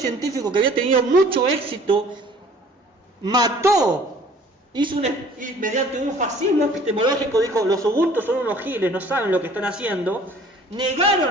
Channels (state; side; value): normal; both; correlation 0.52